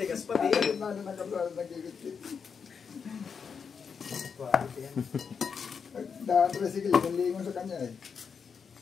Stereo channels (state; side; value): quieter; right; 6.2 dB